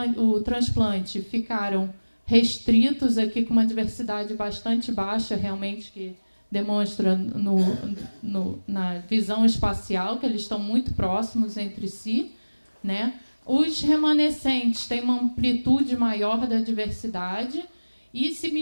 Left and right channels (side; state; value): both; inverted; correlation -1.00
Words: o transplante, ficaram restritos aqui com uma diversidade bastante baixa, realmente, que demonstra na visão espacial que eles estão muito próximos entre si. Né? Os remanescentes têm uma amplitude maior da diversidade e se